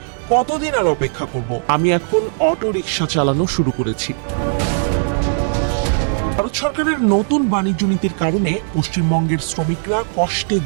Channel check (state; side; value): silent; left; digital silence